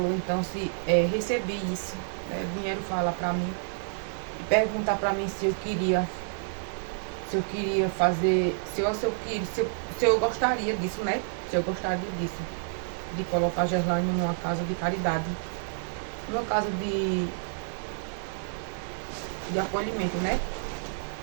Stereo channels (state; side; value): silent; left; digital silence